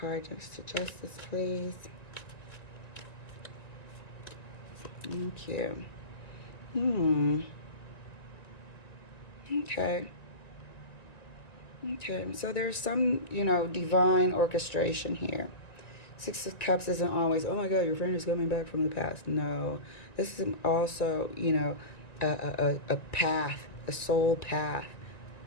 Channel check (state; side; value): late; right; 1.9 ms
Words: next to Justice, please. Thank you. Okay, so there's some, you know, divine orchestration here. Six of Cups isn't always, oh my God, your friend is coming back from the past. No, this is also, you know, a path, a soul path,